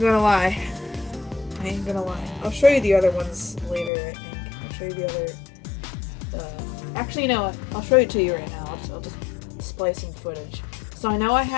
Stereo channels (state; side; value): drops out; right; at 3.9 s